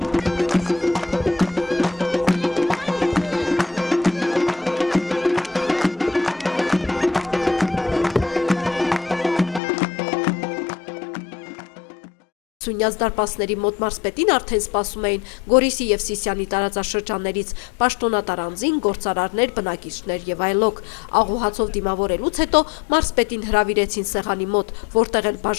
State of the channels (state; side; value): drops out; right; at 9.6 s